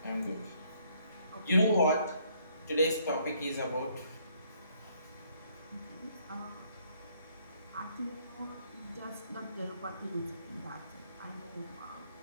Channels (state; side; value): inverted; both; correlation -0.67